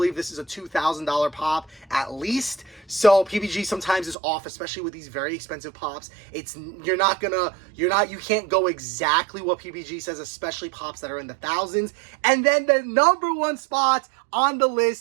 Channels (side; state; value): left; drops out; at 4.2 s